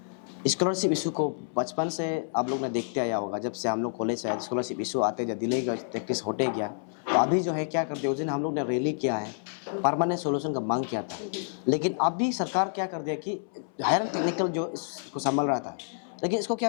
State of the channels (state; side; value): silent; right; 59 dB below the other